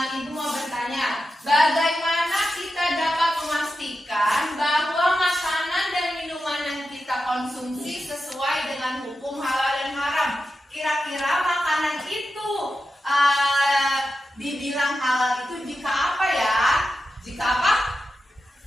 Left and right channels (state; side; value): normal; both; correlation 0.90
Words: Ibu mau bertanya, bagaimana kita dapat memastikan bahwa makanan dan minuman yang kita konsumsi sesuai dengan hukum halal dan haram? Kira-kira makanan itu dibilang halal itu jika apa ya? Jika apa?